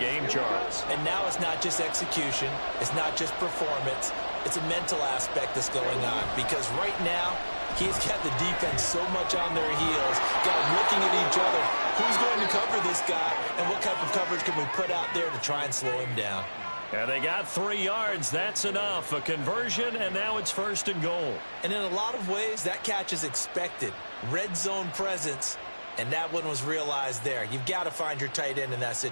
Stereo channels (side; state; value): both; inverted; correlation -1.00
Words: Charles. And now it's not just execution. It's not just performance. It's a mental aspect that's going on because right now he's got the defense so much on their heels, got them looking at each other. Who's going to cover this guy, and what type of coverage can we put out there to try and slow him down? And they got 3 yards. That's enough. A conversion, and now it's 1st and goal. And in a lot of ways, that catch is expected. Red zone presence, and that one was realized there. You've got to find your tight end in that